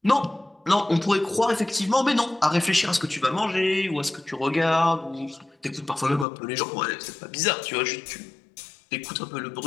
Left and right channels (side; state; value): right; drops out; at 6.2 s